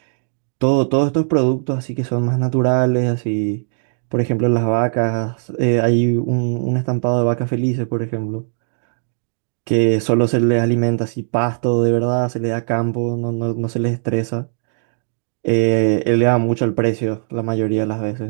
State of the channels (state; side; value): silent; left; digital silence